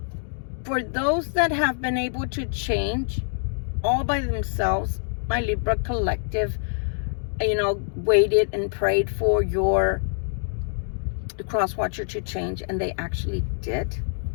For those that have been able to change all by themselves, my Libra collective, waited and prayed for the cross watcher to change, and they actually did.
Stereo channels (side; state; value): right; silent; 62 dB below the other